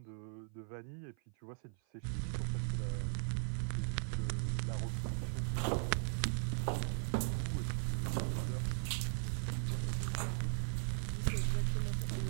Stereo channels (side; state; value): left; silent; 52 dB below the other